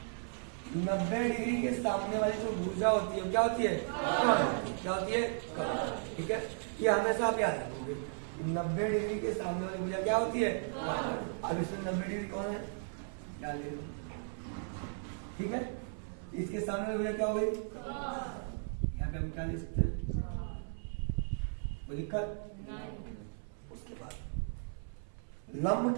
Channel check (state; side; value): silent; left; 54 dB below the other